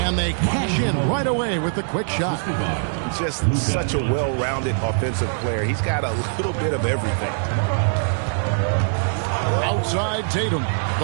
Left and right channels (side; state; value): left; silent; digital silence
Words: they cash in right away with the quick shot. Just such a well-rounded offensive player. He's got a little bit of everything. Outside Tatum,